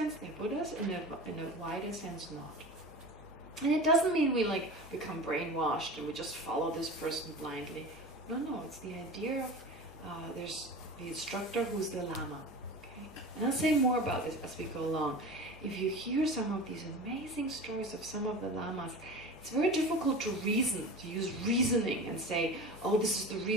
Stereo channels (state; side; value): normal; both; correlation 0.33